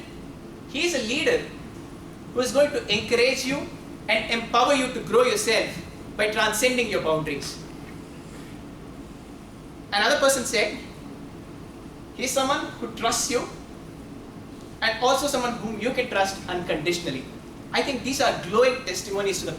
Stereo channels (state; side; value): identical; both; correlation 1.00